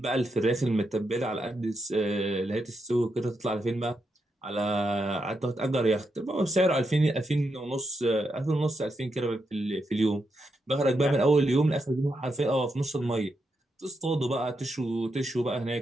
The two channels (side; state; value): both; normal; correlation 0.84